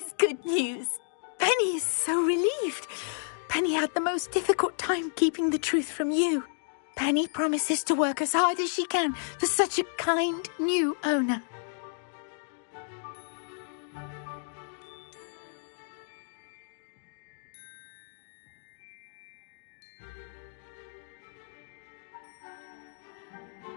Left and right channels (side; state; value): right; silent; digital silence